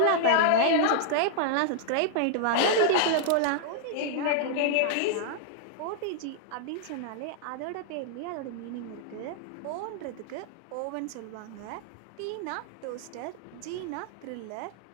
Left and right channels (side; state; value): both; different; correlation -0.01